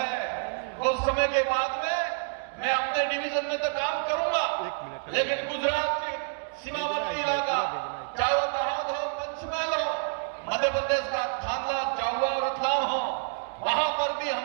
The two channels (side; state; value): left; silent; digital silence